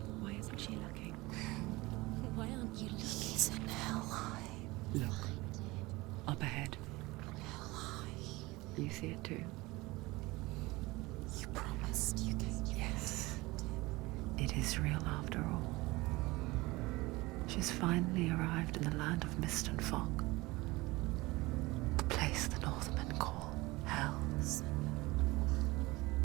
Why isn't she looking? Why aren't you looking? He's in Helheim. Look, up ahead. Helheim. You see it too? You promised you came. Yes. It is real after all. She's finally arrived in the land of mist and fog. The place the Northmen call Hell.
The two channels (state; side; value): quieter; left; 21.5 dB